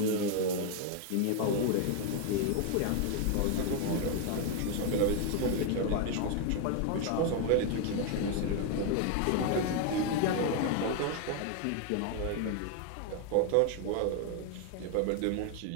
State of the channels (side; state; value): both; different; correlation 0.01